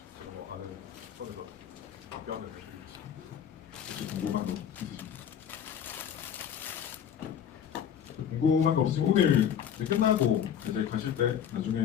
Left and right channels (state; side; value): quieter; right; 8.8 dB